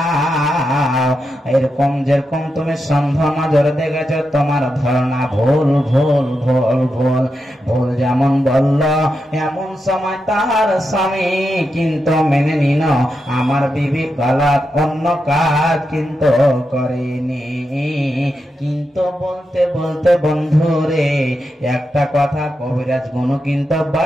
এরকম যেরকম তুমি সন্দেহ নজরে দেখেছ, তোমার ধারণা ভুল ভুল ভুল ভুল ভুল। যেমন বলল এমন সময় তার স্বামী কিন্তু মেনে নিল, আমার বিবি গালাত অন্য কাজ কিন্তু করেনি। কিন্তু বলতে বলতে বন্ধুরে একটা কথা কবিরাজ গুণ কিন্তু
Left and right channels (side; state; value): both; normal; correlation 0.87